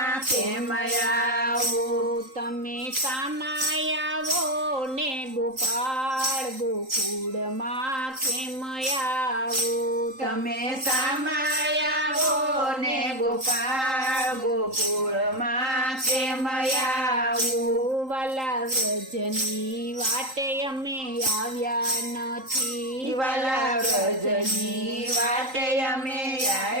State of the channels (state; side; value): late; left; 3.8 ms